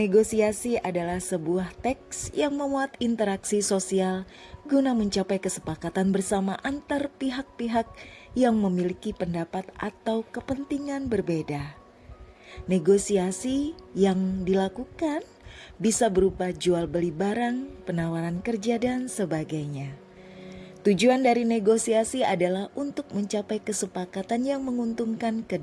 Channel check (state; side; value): identical; both; correlation 1.00